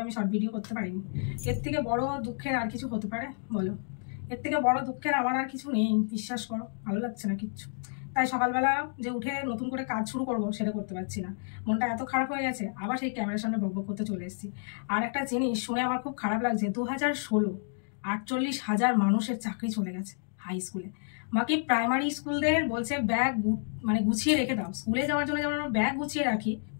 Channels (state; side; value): silent; right; 58 dB below the other